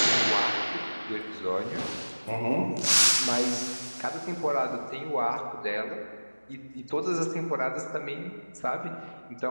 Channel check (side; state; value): both; inverted; correlation -1.00